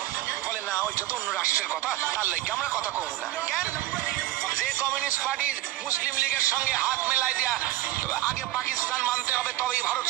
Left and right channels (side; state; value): left; quieter; 15.8 dB